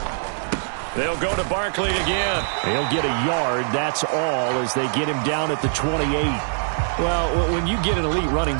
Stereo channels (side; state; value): left; silent; digital silence